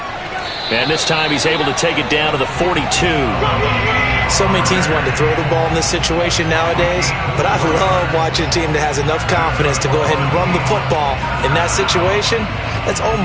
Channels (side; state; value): both; identical; correlation 1.00